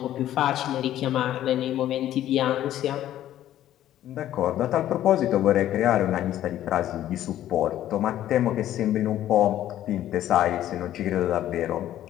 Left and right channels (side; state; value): right; quieter; 12.5 dB